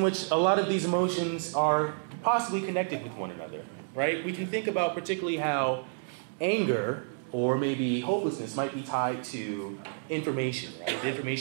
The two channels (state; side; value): silent; left; digital silence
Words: which a lot of these emotions are possibly connected with one another, right? We can think about particularly how anger or maybe hopelessness might be tied to information, right? The